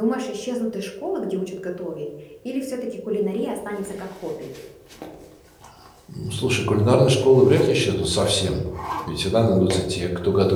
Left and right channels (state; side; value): identical; both; correlation 1.00